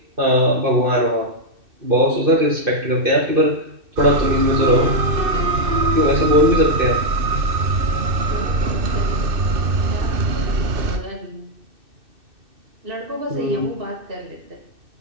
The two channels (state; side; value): late; left; 2.6 ms